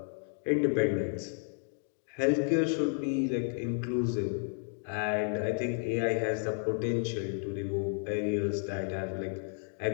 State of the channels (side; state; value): right; silent; 56 dB below the other